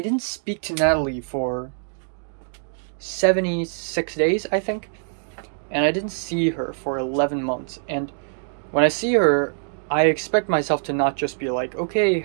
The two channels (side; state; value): left; silent; digital silence